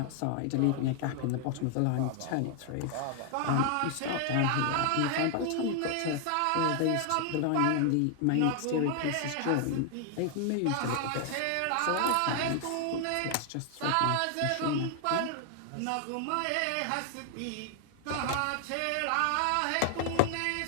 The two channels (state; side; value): different; both; correlation 0.00